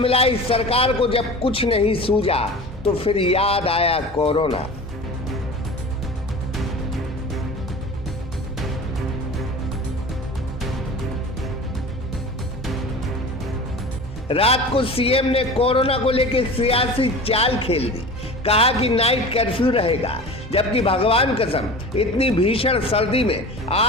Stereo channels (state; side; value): normal; both; correlation 0.36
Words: सरकार को जब कुछ नहीं सूझा तो फिर याद आया कोरोना। रात को सीएम ने कोरोना को लेकर सियासी चाल खेल दी, कहा कि नाइट कर्फ्यू रहेगा, जबकि भगवान कसम इतनी भीषण सर्दी में